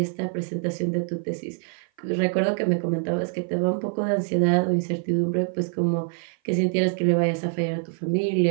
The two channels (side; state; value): left; silent; 56 dB below the other